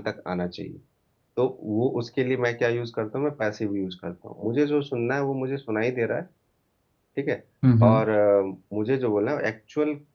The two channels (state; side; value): identical; both; correlation 1.00